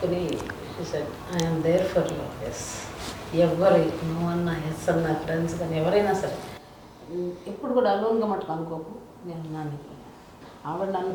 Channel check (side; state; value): both; identical; correlation 1.00